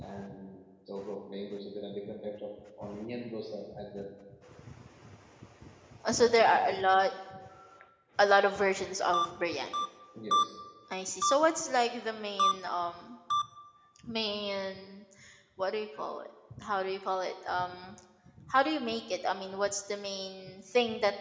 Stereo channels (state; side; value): identical; both; correlation 1.00